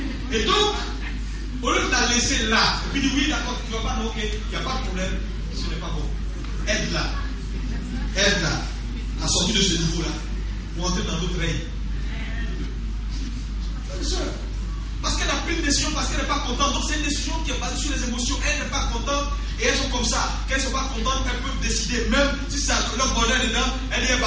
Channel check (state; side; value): identical; both; correlation 1.00